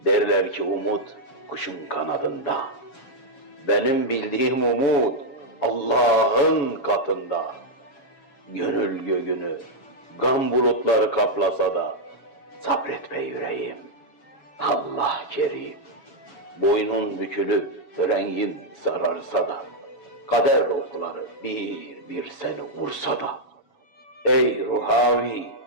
Derler ki umut kuşun kanadında, benim bildiğim umut Allah'ın katında. Gönül göğünü gam bulutları kaplasa da, sabret be yüreğim, Allah kerim. Boynun bükülüp rengin sararsa da, kader okları bir bir seni vursa da, ey ruhavi,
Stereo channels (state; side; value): late; right; 7.2 ms